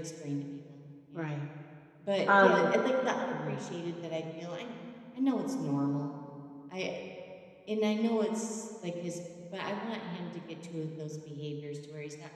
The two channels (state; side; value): identical; both; correlation 1.00